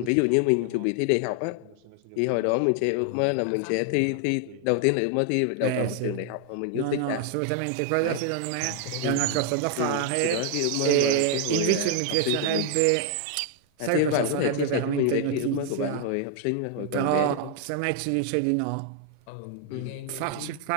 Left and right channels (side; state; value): both; different; correlation 0.00